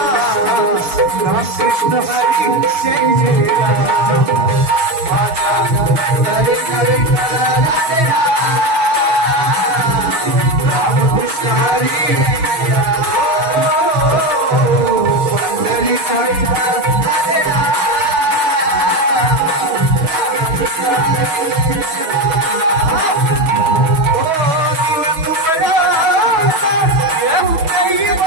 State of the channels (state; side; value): late; left; 6.3 ms